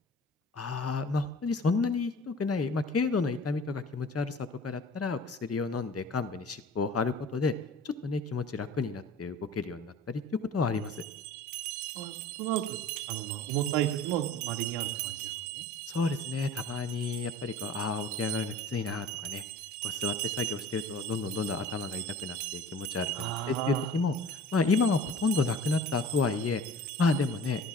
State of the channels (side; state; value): both; normal; correlation 0.43